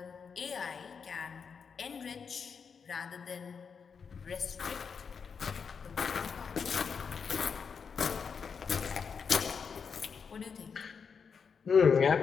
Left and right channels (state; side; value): quieter; right; 6.1 dB